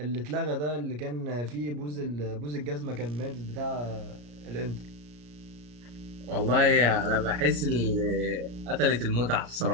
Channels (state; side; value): late; left; 34 ms